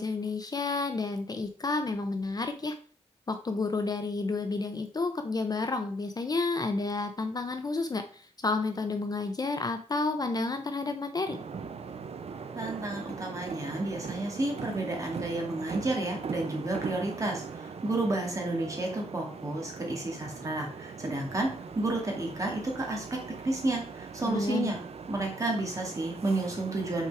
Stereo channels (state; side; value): normal; both; correlation 0.70